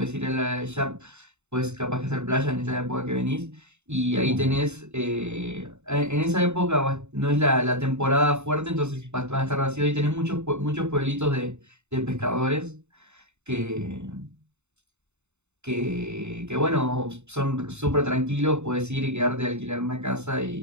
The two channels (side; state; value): left; late; 0.82 ms